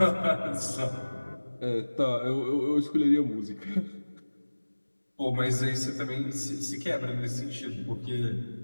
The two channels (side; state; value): both; inverted; correlation -1.00